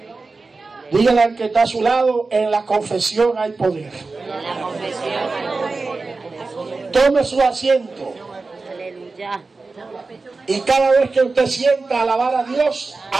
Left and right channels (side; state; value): left; quieter; 3.8 dB